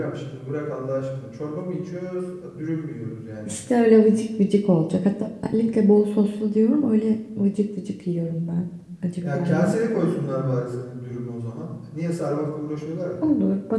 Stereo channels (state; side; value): identical; both; correlation 1.00